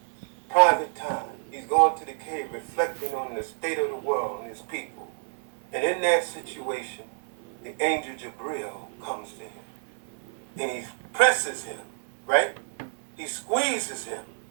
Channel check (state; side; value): silent; left; 59 dB below the other